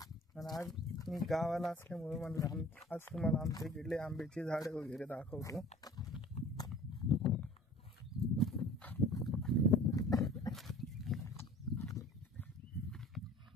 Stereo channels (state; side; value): normal; both; correlation 0.46